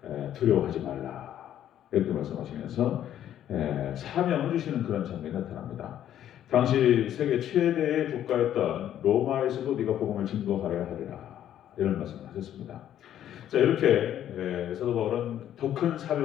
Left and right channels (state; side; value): quieter; right; 11.0 dB